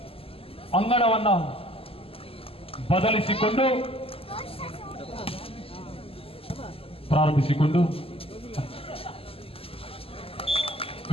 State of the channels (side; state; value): right; late; 0.28 ms